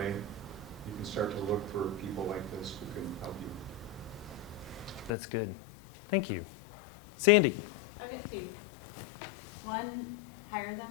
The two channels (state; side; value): drops out; right; at 5.2 s